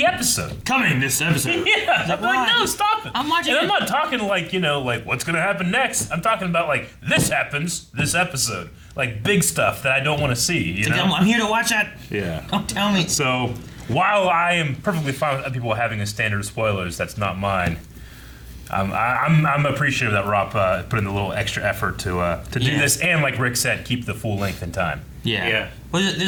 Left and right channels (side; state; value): both; identical; correlation 1.00